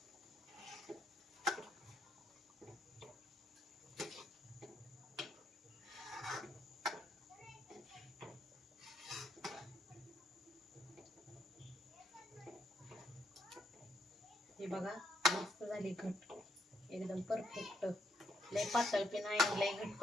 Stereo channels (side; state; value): both; normal; correlation 0.74